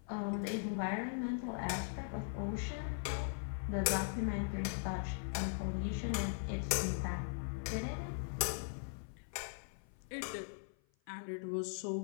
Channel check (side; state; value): right; silent; 51 dB below the other